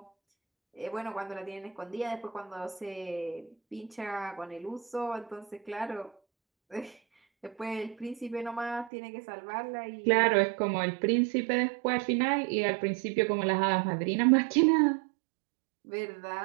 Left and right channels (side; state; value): left; drops out; at 8.9 s